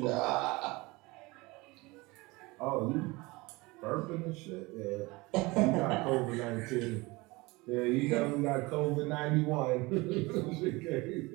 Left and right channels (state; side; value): quieter; left; 23.4 dB